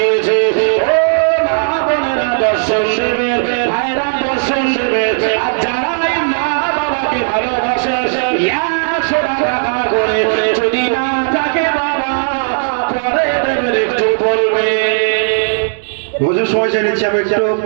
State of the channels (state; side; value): silent; left; digital silence